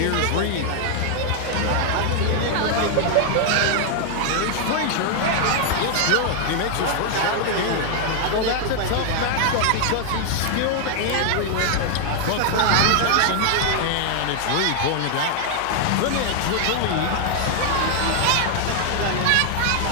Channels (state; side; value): different; both; correlation 0.00